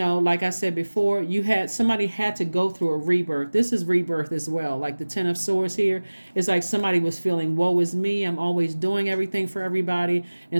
like I said before, somebody had to go through a rebirth. This is rebirth as well. Like the Ten of Swords here, it's like somebody was feeling, woe is me, I'm always doing everything for everybody.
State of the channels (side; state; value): both; inverted; correlation -1.00